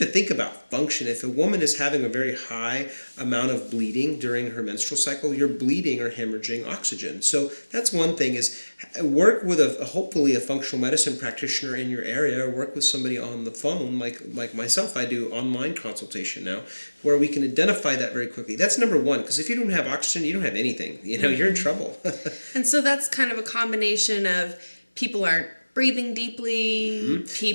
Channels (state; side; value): inverted; both; correlation -1.00